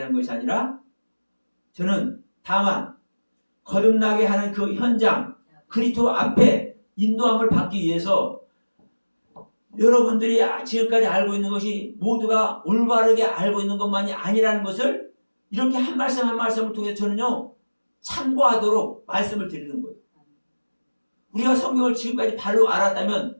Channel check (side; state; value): both; inverted; correlation -1.00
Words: 하는 것이 아니라 저는 다만 거듭나게 하는 그 현장 그리스도 앞에 인도함을 받기 위해서 여러분들이 지금까지 알고 있는 것이 모두가 올바르게 알고 있는 것만이 아니라는 것을 이렇게 한 말씀 한 말씀을 통해 저는요 참고하도록 말씀을 드리는 거예요. 우리가 성경을 지금까지 바로 알았다면